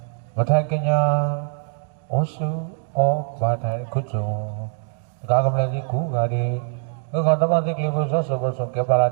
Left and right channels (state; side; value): silent; left; digital silence